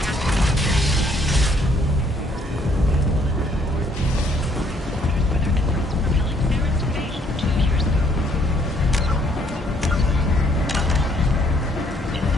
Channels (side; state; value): both; normal; correlation 0.65